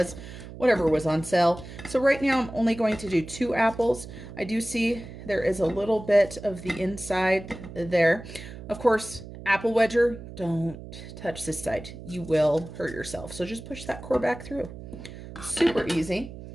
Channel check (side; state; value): right; noise; hum, 13 dB below the sound